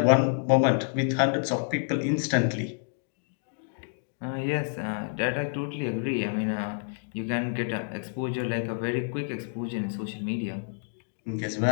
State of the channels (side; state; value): right; silent; digital silence